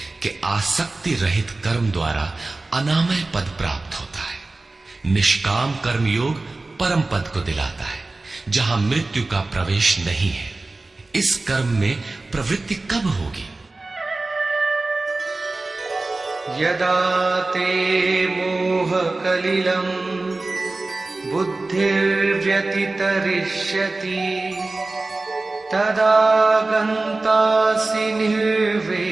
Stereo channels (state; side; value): quieter; left; 3.2 dB